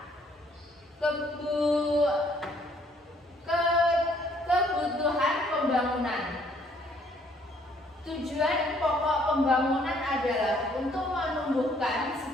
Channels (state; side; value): normal; both; correlation 0.64